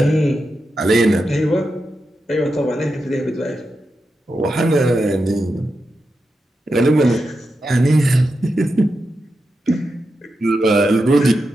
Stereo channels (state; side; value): normal; both; correlation 0.88